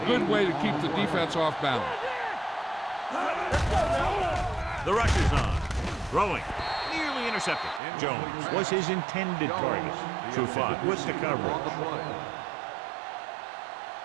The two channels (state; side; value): drops out; left; at 7.8 s